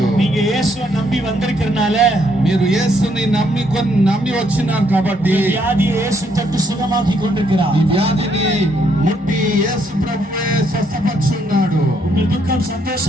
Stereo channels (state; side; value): normal; both; correlation 0.72